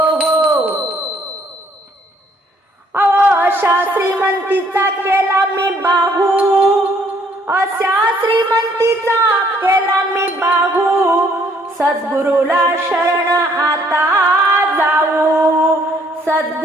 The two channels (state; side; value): normal; both; correlation 0.64